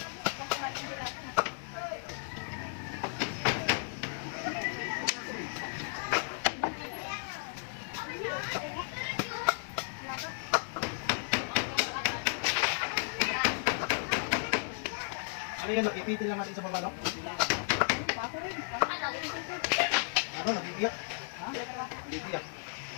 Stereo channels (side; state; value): right; silent; digital silence